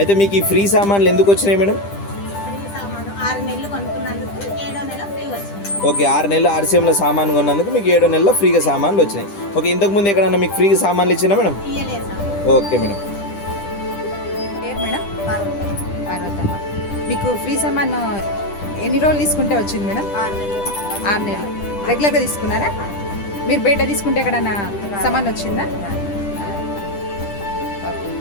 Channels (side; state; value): right; late; 10 ms